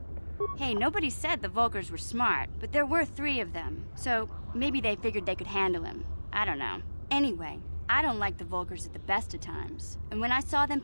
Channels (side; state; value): both; inverted; correlation -1.00